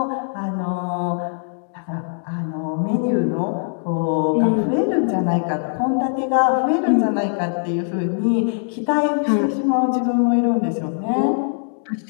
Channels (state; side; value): silent; right; digital silence